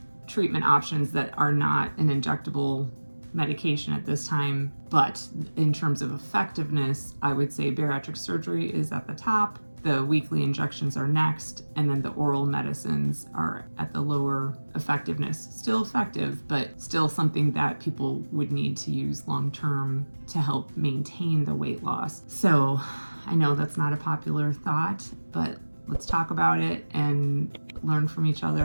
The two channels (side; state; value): both; inverted; correlation -1.00